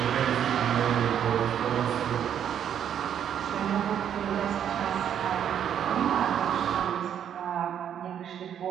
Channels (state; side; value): quieter; left; 9.2 dB